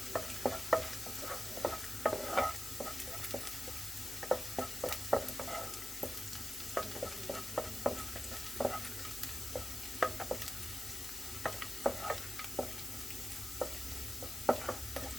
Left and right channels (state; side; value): noise; left; hiss, 7 dB below the sound